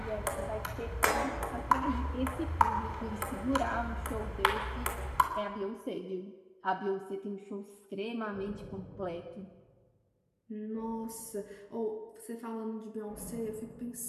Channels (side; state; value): both; identical; correlation 1.00